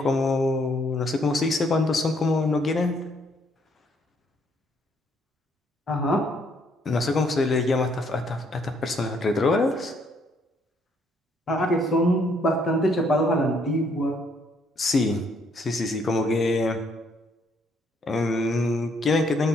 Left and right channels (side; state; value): both; normal; correlation 0.69